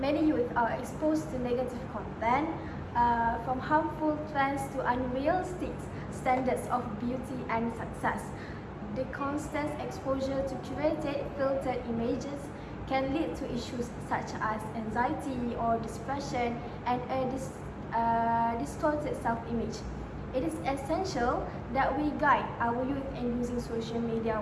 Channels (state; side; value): identical; both; correlation 1.00